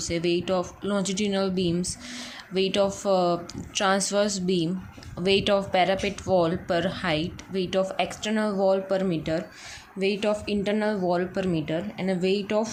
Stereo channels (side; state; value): both; identical; correlation 1.00